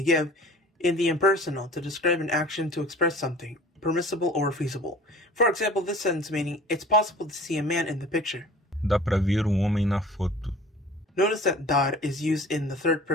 give, in the impersonal to describe an action to express something, permissible or feasible. For example, this sentence meaning, it's possible to see a man in the picture. Dá pra ver homem na foto. Notice that dar is used in the third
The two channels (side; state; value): both; normal; correlation 0.45